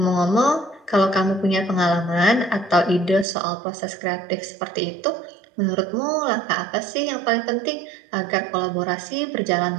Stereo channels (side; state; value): left; drops out; at 3.2 s